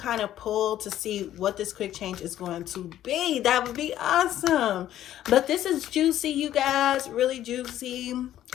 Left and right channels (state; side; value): quieter; right; 12.3 dB